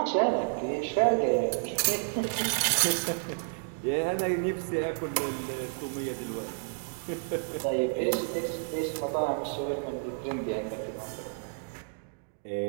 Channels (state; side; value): silent; left; digital silence